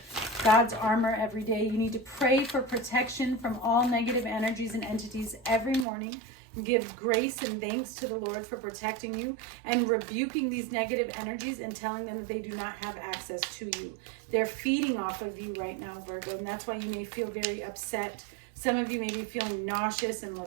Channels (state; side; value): drops out; left; at 5.9 s